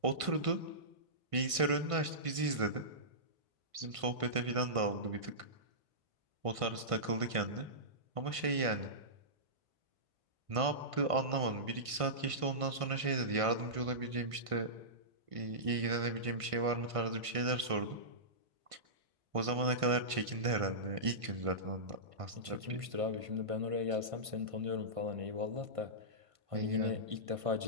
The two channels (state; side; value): late; left; 1.5 ms